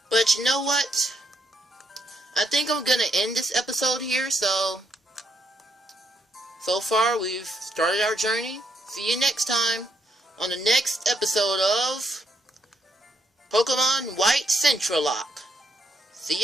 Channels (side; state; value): both; normal; correlation 0.76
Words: But you know what? I think I'm gonna end this episode here. So far we've started our journey. See you next time on the next episode of Pokemon White Centralocke. See